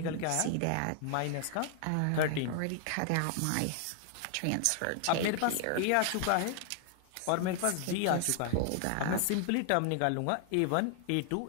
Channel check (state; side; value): different; both; correlation 0.00